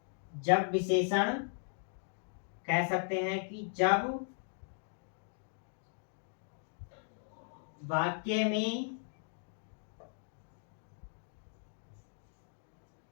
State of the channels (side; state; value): right; silent; 53 dB below the other